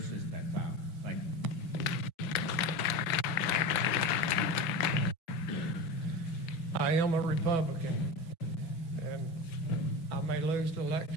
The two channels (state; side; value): late; right; 6.0 ms